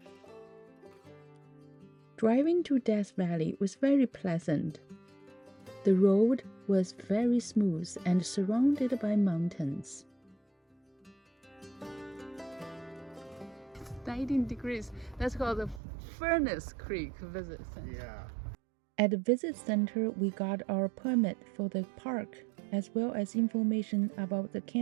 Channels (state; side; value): drops out; left; at 15.8 s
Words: Driving to Death Valley was very pleasant. The road was very smooth and surrounded by mountains. 19 degrees. That's called the Furnace Creek Visit Center. Yeah. At the visit center, we got our permit for the park, as well as information about the